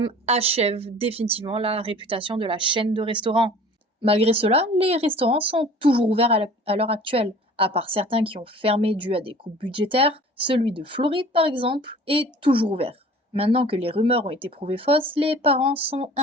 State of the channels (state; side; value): normal; both; correlation 0.46